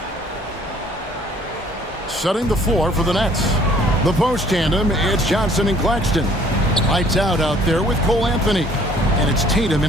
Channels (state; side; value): normal; both; correlation 0.58